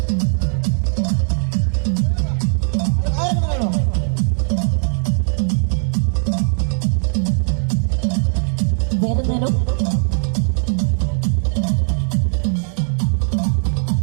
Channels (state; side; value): silent; left; 62 dB below the other